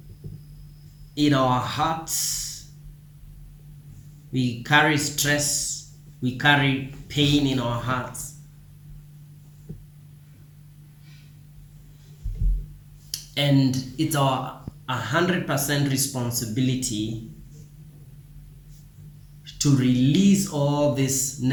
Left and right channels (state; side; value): identical; both; correlation 1.00